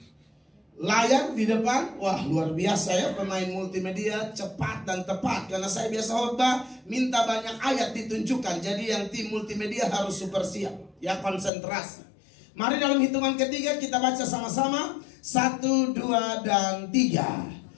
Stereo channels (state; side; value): drops out; right; at 11.5 s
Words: layar di depan. Wah, luar biasa ya, pemain multimedia cepat dan tepat. Karena saya biasa khotbah minta banyak ayat ditunjukkan. Jadi yang tim multimedia harus super siap, ya, konsentrasi. Mari dalam hitungan ketiga kita baca sama-sama. 1, 2, dan